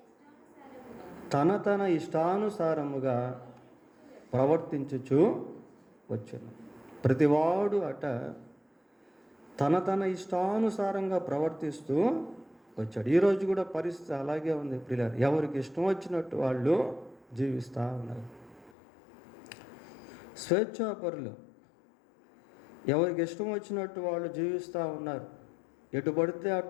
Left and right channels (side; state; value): right; drops out; at 18.7 s